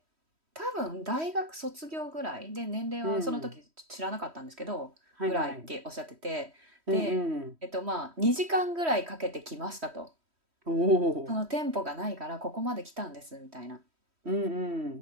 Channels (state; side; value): late; left; 3.1 ms